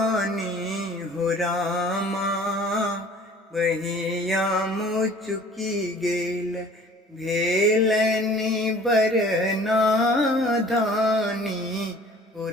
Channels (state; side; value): normal; both; correlation 0.49